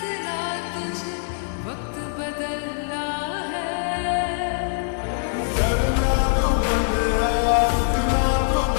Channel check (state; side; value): silent; right; digital silence